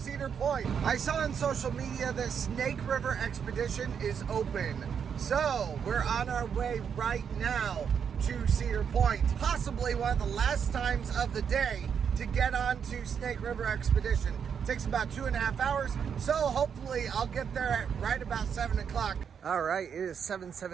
Point. I saw on social media that Snake River Expedition is open. So we're on our way right now to Cedar Point. Possibly one of the last times of the day to get on to Snake River Expedition. It takes about 2.5 hours, so hopefully I'll get there at right about 7 o'clock. All right, it is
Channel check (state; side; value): quieter; left; 7.3 dB